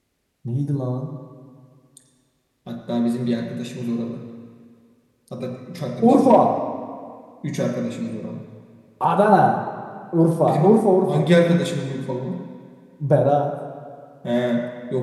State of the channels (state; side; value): identical; both; correlation 1.00